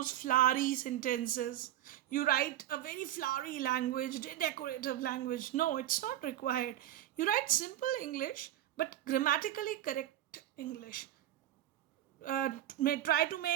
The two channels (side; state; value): left; quieter; 12.8 dB